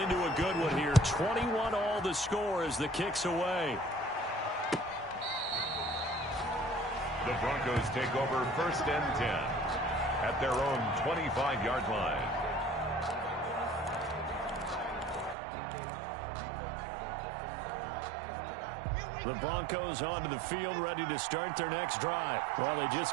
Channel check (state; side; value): drops out; left; at 15.4 s